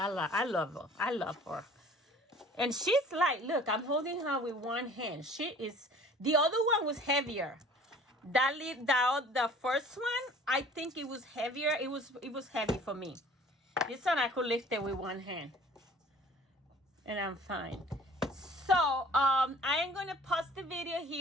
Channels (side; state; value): both; normal; correlation 0.49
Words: I love her. And she's like, look, I'm holding her with one hand. She is, the other one was heavier. The first one, I think it was heavier. It was heavy for me. This one I could lift it with one hand. And I'm fine. So, I am going to pause the video